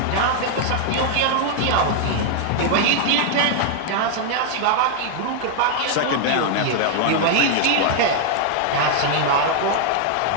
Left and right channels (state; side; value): different; both; correlation 0.00